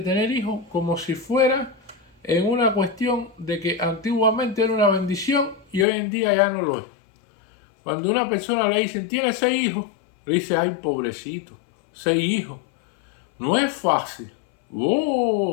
hijos como si fuera en una cuestión de que antiguamente era una bendición y hoy en día ya no lo es. Cuando una persona le dicen, tiene 6 hijos, le dice, ay, pobrecito, 6 hijos. No es fácil.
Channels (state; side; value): drops out; right; at 5.9 s